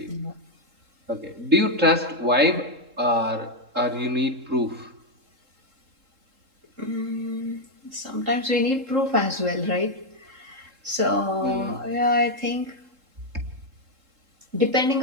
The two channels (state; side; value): late; left; 3.7 ms